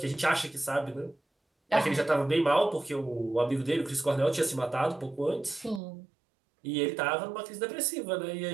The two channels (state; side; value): drops out; left; at 5.8 s